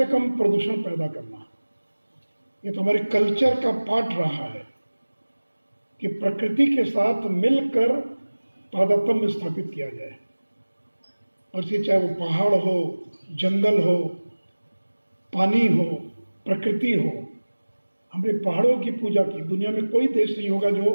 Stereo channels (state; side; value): inverted; both; correlation -1.00